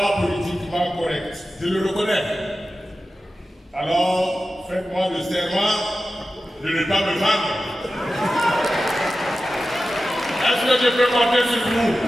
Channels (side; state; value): both; normal; correlation 0.94